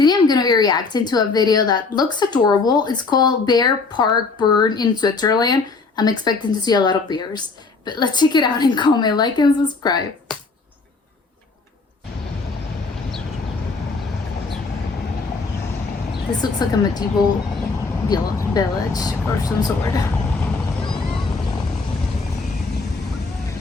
I'm going to be reacting to a video that looks adorable. It's called Bear Park Bern in Switzerland. I'm expecting to see a lot of bears. But let's check it out and comment, like, and subscribe. This looks like a medieval village or some sort.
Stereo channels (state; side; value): quieter; right; 4.1 dB